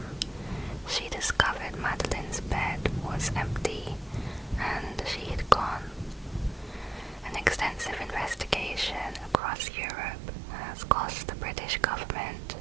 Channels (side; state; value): left; drops out; at 9.3 s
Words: she discovered Madeline's bed was empty and she had gone. An extensive investigation across Europe has cost the British government